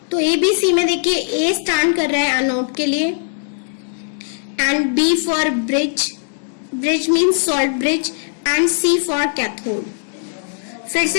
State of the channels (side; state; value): right; silent; digital silence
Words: तो ABC में देखिए A स्टैंड कर रहा है एनोड के लिए, and B for bridge, bridge means salt bridge, and C for cathode. फिर